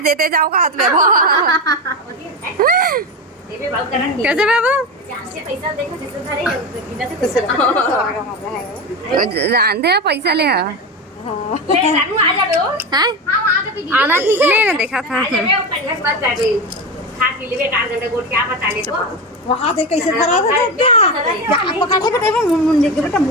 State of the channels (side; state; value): both; normal; correlation 0.20